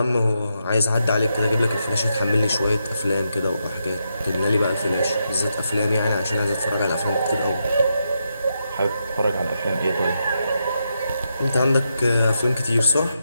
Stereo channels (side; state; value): both; inverted; correlation -0.83